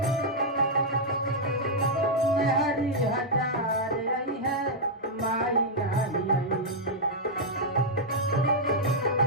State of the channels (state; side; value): normal; both; correlation -0.05